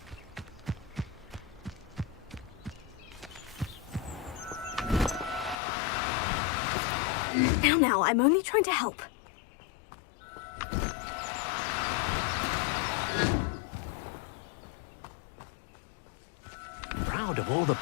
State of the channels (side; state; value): right; drops out; at 5.6 s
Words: Now, I'm only trying to help. Deke thinks you should be proud of all the